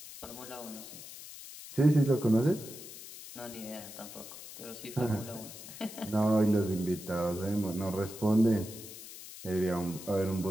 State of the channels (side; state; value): left; noise; hiss, 14 dB below the sound